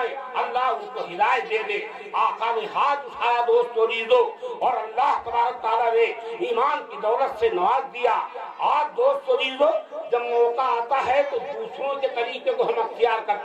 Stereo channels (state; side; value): identical; both; correlation 1.00